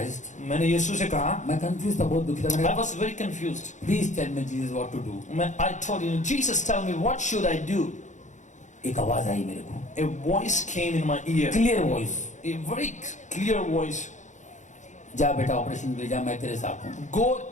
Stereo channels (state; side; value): late; right; 0.35 ms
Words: मैंने यीशु से कहा, मैं कंफ्यूज था, बहुत दुखी था. I मैंने was very confused. Please tell me Jesus what to do. I told him, Jesus, tell me what should I do? एक आवाज आई मेरे को, A voice came in my ear. Clear voice. A very clear voice. जा बेटा ऑपरेशन के लिए जा, मैं तेरे साथ हूँ. Go